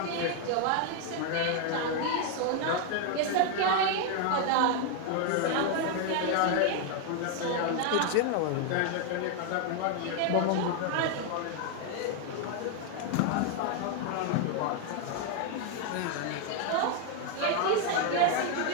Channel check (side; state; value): both; different; correlation 0.00